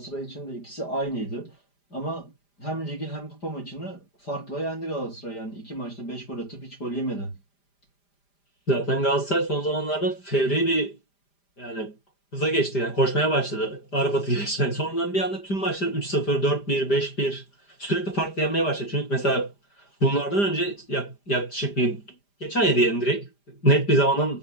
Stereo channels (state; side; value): late; right; 5.0 ms